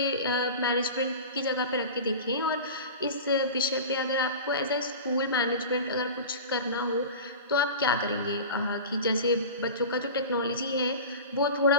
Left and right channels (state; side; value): inverted; both; correlation -0.33